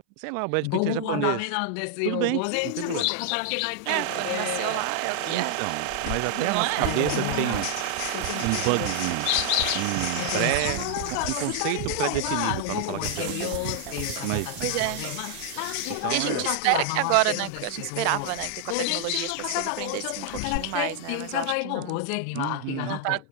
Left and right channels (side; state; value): both; different; correlation -0.01